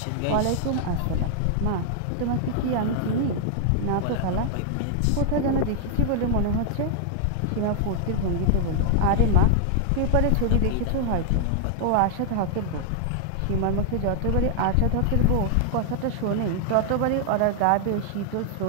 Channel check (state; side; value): different; both; correlation 0.00